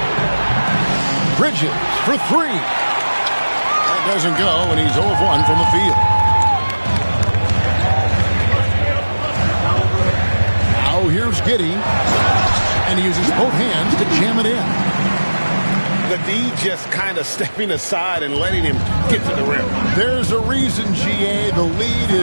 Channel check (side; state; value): both; inverted; correlation -1.00